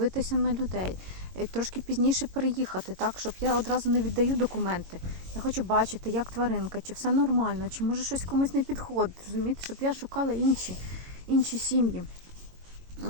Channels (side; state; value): left; late; 22 ms